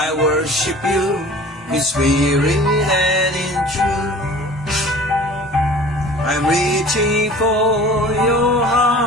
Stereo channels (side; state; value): both; normal; correlation 0.44